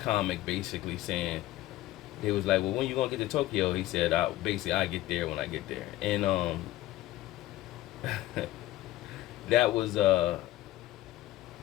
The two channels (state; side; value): quieter; right; 15.6 dB